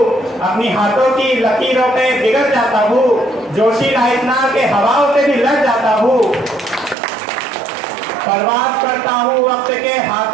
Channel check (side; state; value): left; drops out; at 7.0 s